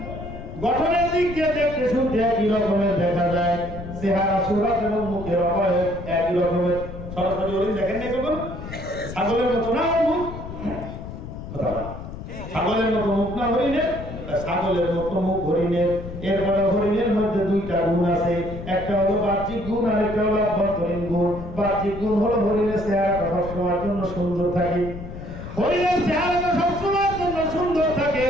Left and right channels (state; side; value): noise; left; rumble, 10 dB below the sound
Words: গঠনের দিক দিয়ে দেখতে শুনতে একই রকমের দেখা যায়, চেহারা সুরাত এবং মুখের অবয়ব একই রকমের। সরাসরি হরিণ দেখেন নাই কখনো? ছাগলের মতো না মুখ, কথা না, ছাগলের মতো মুখ না হরিণের, ছাগলের মতো মুখ হরিণের। এরপরে হরিণের মধ্যে দুইটা গুণ আছে, একটা হলো বাহ্যিক গুণ আর একটা হলো অভ্যন্তরীণ গুণ। বাহ্যিক গুণ হলো হরিণের চেহারাটা সবসময়ের জন্য সুন্দর থাকে, হরিণের চেহারাটা সবসময়ের জন্য সুন্দর থাকে।